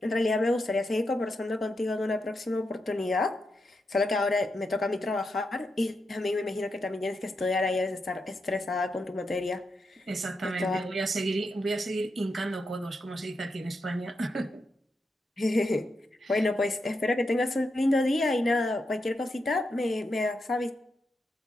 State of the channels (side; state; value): both; normal; correlation 0.85